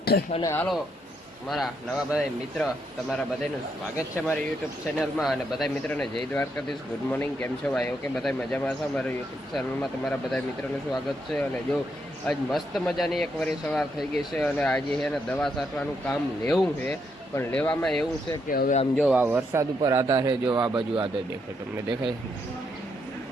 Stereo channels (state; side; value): normal; both; correlation 0.77